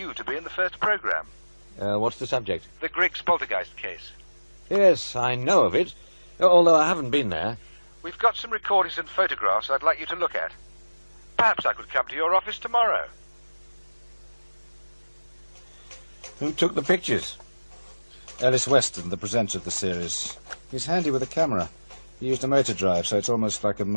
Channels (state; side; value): inverted; both; correlation -1.00